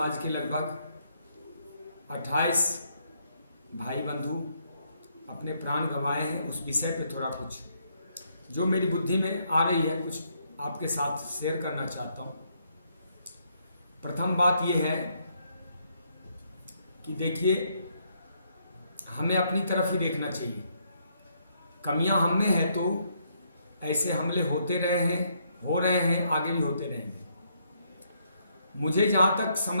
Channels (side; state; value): both; inverted; correlation -0.74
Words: के लगभग 28 भाई बंधु अपने प्राण गंवाए हैं। उस विषय पे थोड़ा कुछ जो मेरी बुद्धि में आ रही है कुछ आपके साथ शेयर करना चाहता हूँ। प्रथम बात यह है कि देखिए, हमें अपनी तरफ ही देखना चाहिए। कमियां हम में है तो ऐसे हमले होते रहे हैं, हो रहे हैं, आगे भी होते रहेंगे। मुझे जहाँ तक